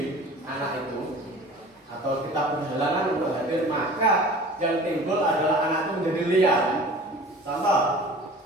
anak itu, atau kita berhalangan untuk hadir, maka yang timbul adalah anak itu menjadi liar. Contoh,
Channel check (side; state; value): both; normal; correlation 0.42